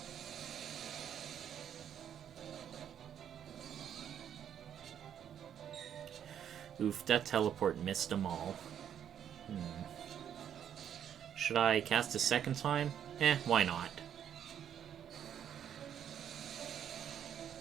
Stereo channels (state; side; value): quieter; left; 9.3 dB